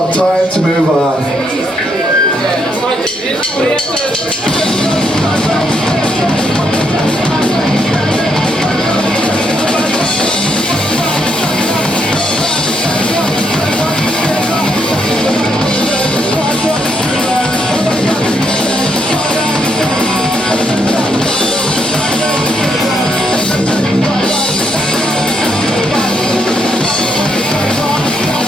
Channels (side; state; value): both; normal; correlation 0.76